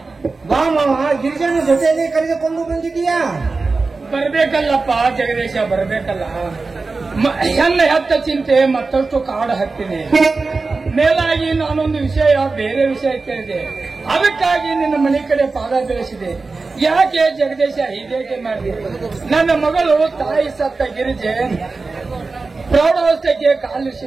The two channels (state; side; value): quieter; left; 3.9 dB